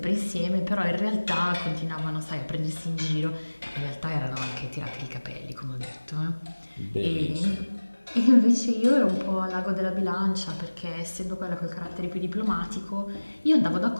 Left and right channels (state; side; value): inverted; both; correlation -1.00